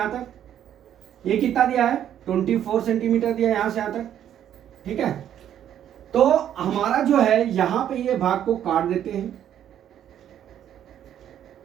तक। ये कितना दिया है 24 सेंटीमीटर दिया है यहां से यहां तक। ठीक है, तो हमारा जो है यहां पे ये भाग को काट देते हैं।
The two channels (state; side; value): quieter; left; 10.3 dB